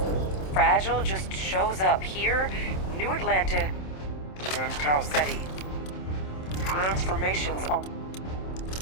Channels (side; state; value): right; late; 27 ms